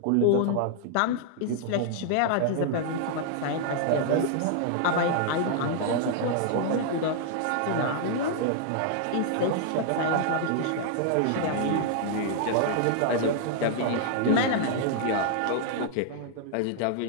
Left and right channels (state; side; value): different; both; correlation 0.00